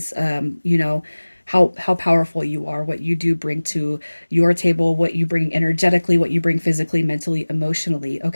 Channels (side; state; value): both; inverted; correlation -1.00